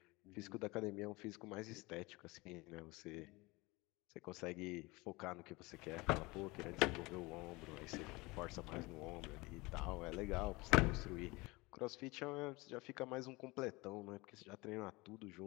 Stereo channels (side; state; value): right; quieter; 23.4 dB